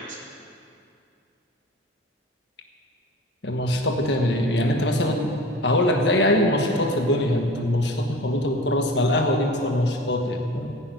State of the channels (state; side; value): normal; both; correlation 0.39